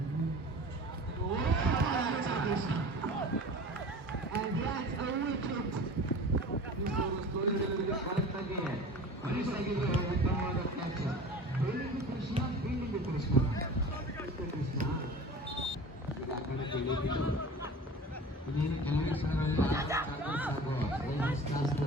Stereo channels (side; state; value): both; normal; correlation 0.38